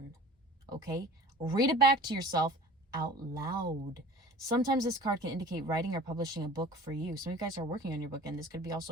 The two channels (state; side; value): normal; both; correlation 0.43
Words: Okay? Read it back to yourself out loud. Sometimes this card can indicate writing or publishing a book for you. Some of you guys are working on your book, and this could be